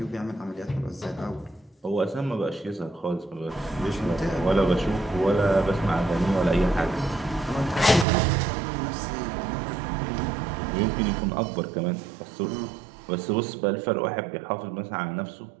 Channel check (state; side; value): drops out; left; at 8.1 s